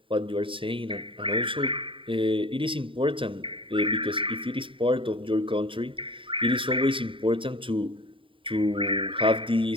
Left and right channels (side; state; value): left; late; 0.25 ms